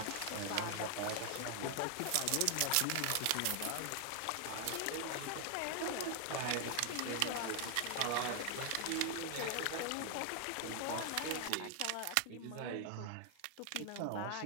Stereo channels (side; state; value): both; different; correlation 0.00